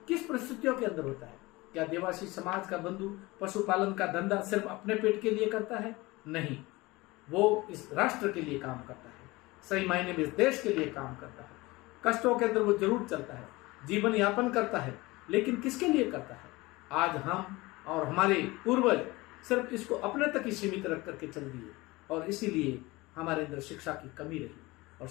किस परिस्थितियों के अंदर होता है? क्या देवासी समाज का बंधु पशुपालन का धंधा सिर्फ अपने पेट के लिए करता है? नहीं, वो इस राष्ट्र के लिए काम करता है, सही मायने में इस देश के लिए काम करता है। कष्टों के अंदर वो जरूर चलता है, जीवन यापन करता है, लेकिन किसके लिए करता है? आज हम और हमारे पूर्वज सिर्फ इसको अपने तक ही सीमित रख करके चल दिए, और इसीलिए हमारे अंदर शिक्षा की कमी रही, और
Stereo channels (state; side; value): quieter; right; 21.7 dB